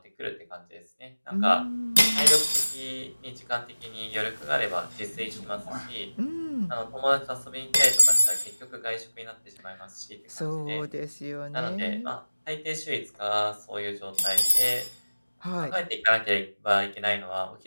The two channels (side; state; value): both; inverted; correlation -1.00